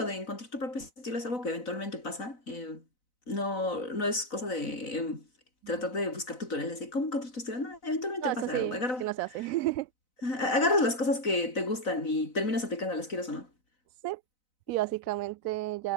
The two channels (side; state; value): right; late; 4.0 ms